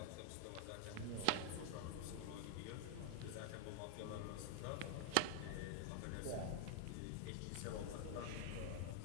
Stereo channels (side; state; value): both; different; correlation 0.00